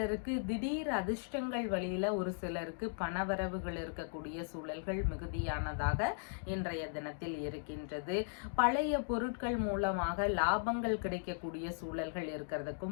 திடீர் அதிர்ஷ்டங்கள் வழியில ஒரு சிலருக்கு பணவரவுகள் இருக்கக்கூடிய சூழல்கள் மிகுதியானதாக இன்றைய தினத்தில் இருக்கின்றது. பழைய பொருட்கள் மூலமாக லாபங்கள் கிடைக்கக்கூடிய சூழல்கள்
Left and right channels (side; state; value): right; silent; digital silence